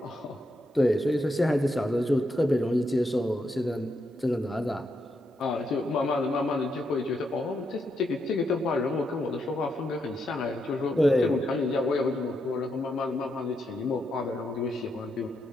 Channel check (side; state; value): both; normal; correlation 0.81